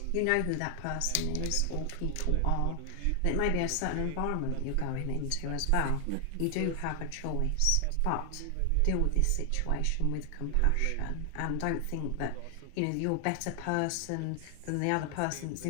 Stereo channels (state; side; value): different; both; correlation 0.00